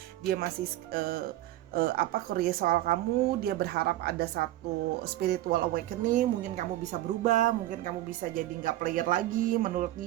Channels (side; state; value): left; quieter; 15.2 dB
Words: Dia masih curious soal kamu. Dia berharap ada satu spiritual awakening, mungkin kamu bisa berubah, mungkin kamu bisa jadi nggak player lagi menurut